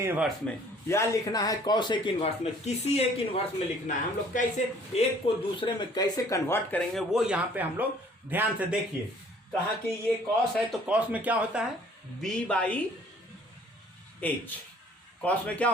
इनवर्स में, या लिखना है कॉसेक इनवर्स में, किसी एक इनवर्स में लिखना है। हम लोग कैसे एक को दूसरे में कैसे कन्वर्ट करेंगे वो यहाँ पे हम लोग ध्यान से देखिए। कहा कि ये कॉस है तो कॉस में क्या होता है b/h, कॉस में क्या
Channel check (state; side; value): normal; both; correlation 0.56